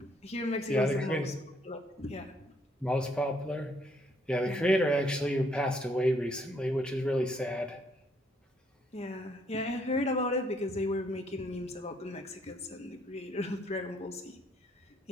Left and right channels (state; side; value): normal; both; correlation 0.69